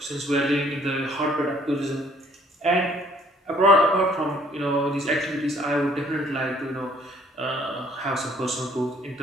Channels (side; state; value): both; normal; correlation 0.60